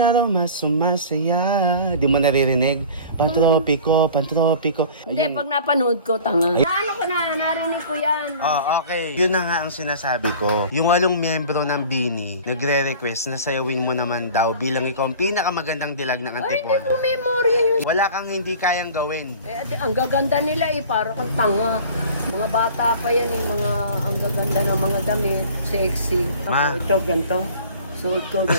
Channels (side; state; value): both; inverted; correlation -0.43